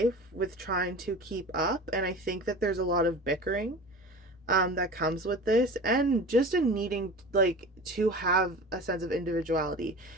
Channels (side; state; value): both; normal; correlation 0.35